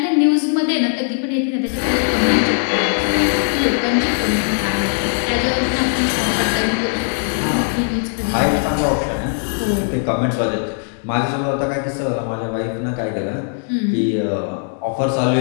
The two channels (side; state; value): right; silent; digital silence